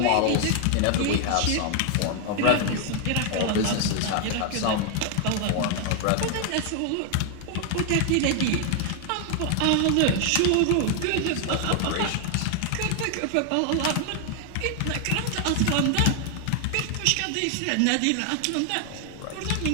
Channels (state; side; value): different; both; correlation 0.00